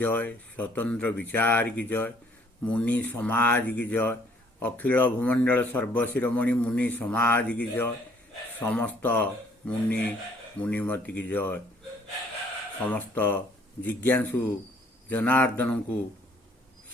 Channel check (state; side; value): normal; both; correlation 0.61